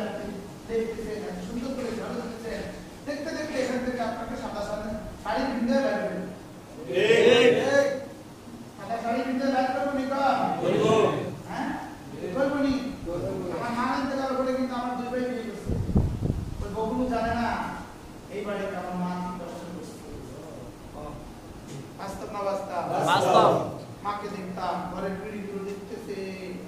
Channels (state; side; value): identical; both; correlation 1.00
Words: দেখতেছেন এত সুন্দর করে ঝড় দিচ্ছেন দেখতে দেখতে এখান থেকে আপনাকে সাদা শাড়ি পিন্ধে বেরোবেন সাদা শাড়ি পিন্ধে বের করবো নি হ্যাঁ করবো নি আমার মা ইন্তেকাল করে কিন্তু আমার 2 ভাই বিয়ে করছে ওই বগুলো জানে না এই বাড়িতে আমার মা কি কষ্ট করছে বাস্তব না বাস্তব মাকে দেখতাম ঘরের পিড়িগুলো দেখতেছে